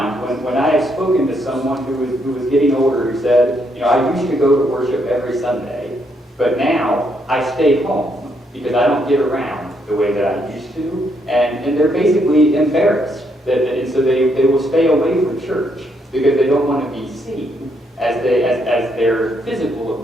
when I have spoken to someone who was getting older who said, I used to go to worship every Sunday, but now I stay home because I don't get around the way that I used to. And they're basically embarrassed. And so they will stay away from church because they don't want to be seen as their physical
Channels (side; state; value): both; normal; correlation 0.75